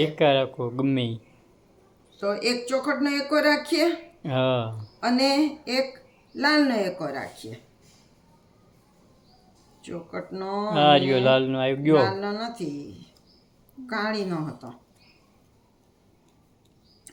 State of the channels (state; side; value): identical; both; correlation 1.00